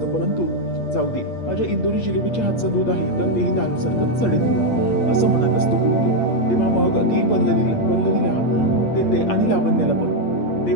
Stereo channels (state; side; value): late; right; 8.5 ms